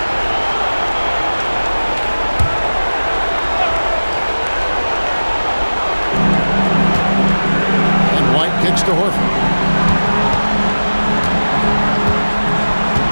And White kicks to Horford.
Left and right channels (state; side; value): inverted; both; correlation -1.00